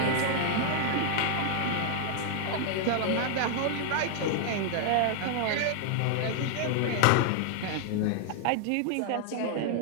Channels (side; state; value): both; different; correlation 0.00